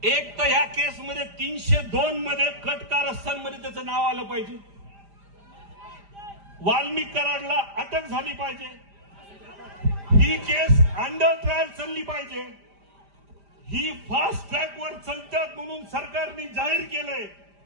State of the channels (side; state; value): left; late; 5.0 ms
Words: एक तर या केसमध्ये 302 मध्ये कट कारस्थानमध्ये त्याचं नाव आलं पाहिजे, वाल्मिक कराडला अटक झाली पाहिजे, ही केस अंडर ट्रायल चालली पाहिजे, ही फास्ट ट्रॅकवर चालतात म्हणून सरकारने जाहीर केलंय.